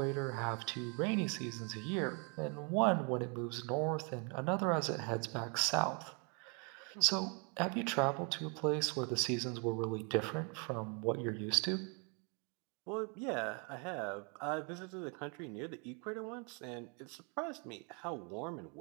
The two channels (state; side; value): quieter; left; 35.8 dB